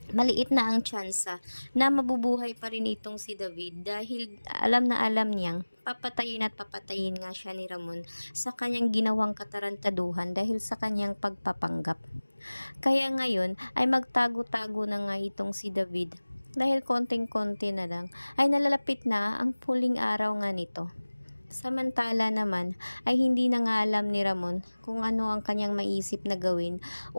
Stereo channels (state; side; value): inverted; both; correlation -1.00